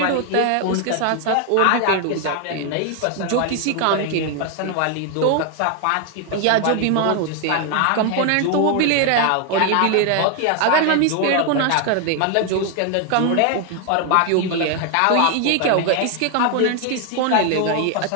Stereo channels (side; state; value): both; different; correlation 0.00